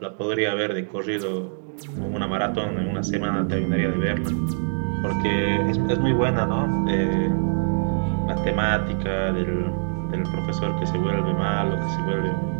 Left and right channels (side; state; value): left; silent; digital silence